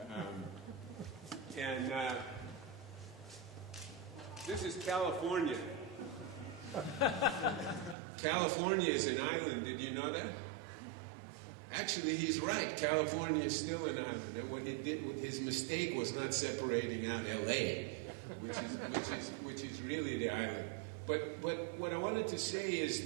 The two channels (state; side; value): drops out; left; at 8.0 s